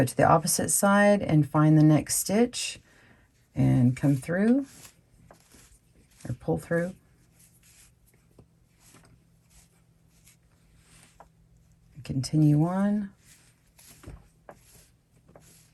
to the opposite side and find the next stitch and come through or pull through. Continue on.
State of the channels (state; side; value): identical; both; correlation 1.00